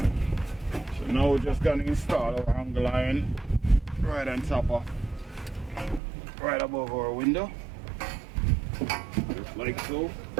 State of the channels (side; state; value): left; drops out; at 6.0 s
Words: So now we're just gonna install our angle iron right on top of, right above our window, just like so.